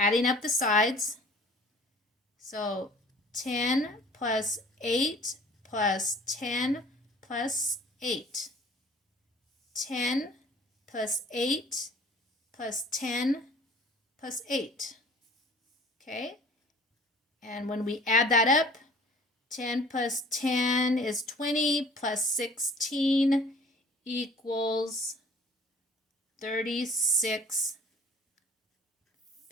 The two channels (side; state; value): both; normal; correlation 0.50